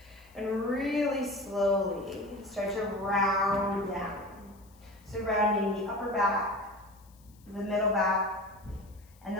And really slowly start to round down. So rounding the upper back, the middle back, and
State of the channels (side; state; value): left; noise; hiss, 29 dB below the sound